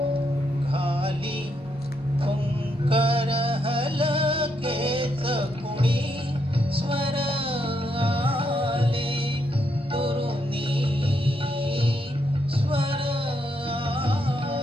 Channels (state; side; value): normal; both; correlation 0.78